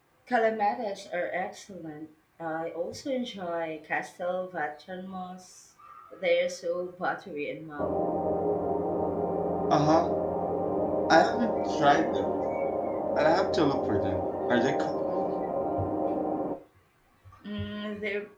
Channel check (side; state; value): both; identical; correlation 1.00